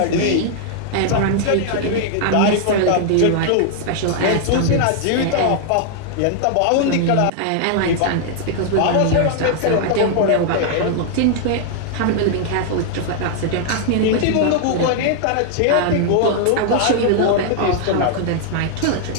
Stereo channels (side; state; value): both; different; correlation 0.00